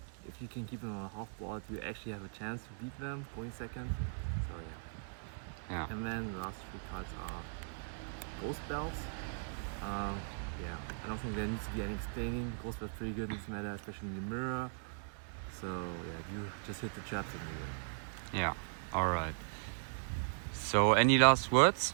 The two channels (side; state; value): left; silent; 52 dB below the other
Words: If you can keep them on a half board, you actually have a chance to beat them going second. So yeah. And then the last 3 cards are Ghost Belts. Yeah, I don't think there needs to be any explaining. Ghost Belt's pretty good in this meta, especially in the mirror. So yeah, you just hit the traps and you win. Yeah, alright. So any last words?